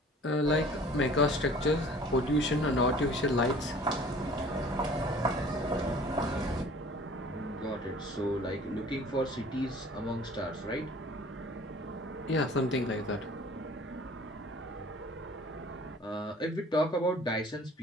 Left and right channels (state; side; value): normal; both; correlation 0.49